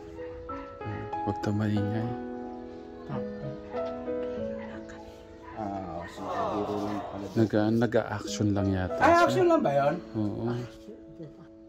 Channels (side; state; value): both; identical; correlation 1.00